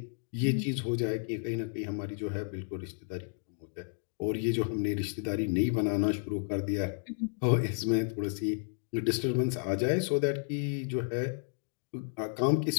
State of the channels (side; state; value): right; silent; digital silence